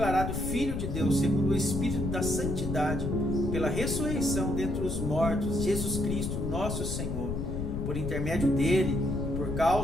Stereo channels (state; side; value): noise; left; rumble, 3 dB below the sound